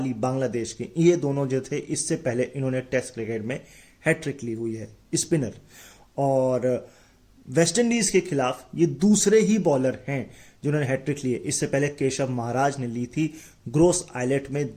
बांग्लादेश के। ये दोनों जो थे इससे पहले इन्होंने टेस्ट क्रिकेट में हैट्रिक ली हुई है, स्पिनर। और वेस्ट इंडीज के खिलाफ ये दूसरे ही बॉलर हैं जिन्होंने हैट्रिक ली है। इससे पहले केशव महाराज ने ली थी ग्रोस आइलैंड में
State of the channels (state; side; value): identical; both; correlation 1.00